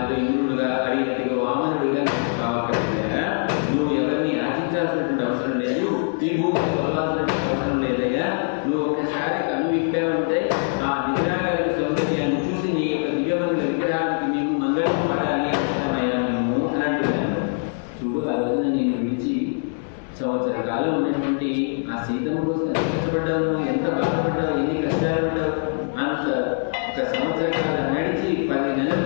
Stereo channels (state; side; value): silent; right; 63 dB below the other